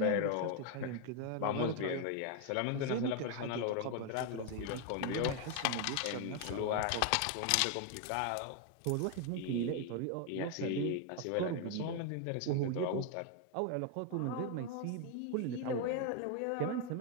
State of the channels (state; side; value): different; both; correlation 0.01